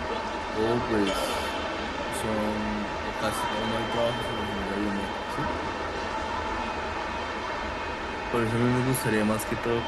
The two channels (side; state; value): both; identical; correlation 1.00